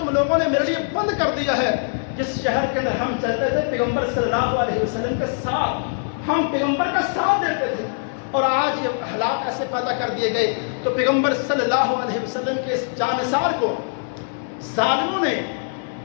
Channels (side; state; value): right; silent; 64 dB below the other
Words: لوگوں نے میرے لیے بند کر دیا ہے جس شہر کے اندر ہم چلتے تھے پیغمبر صلی اللہ علیہ وسلم کے ساتھ۔ ہم پیغمبر کا ساتھ دیتے تھے، اور آج یہ حالات ایسے پیدا کر دیے گئے تو پیغمبر صلی اللہ علیہ وسلم کے اس جانثار کو ظالموں نے